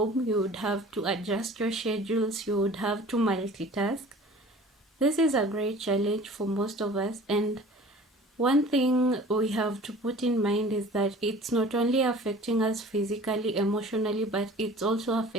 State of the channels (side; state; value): both; normal; correlation 0.45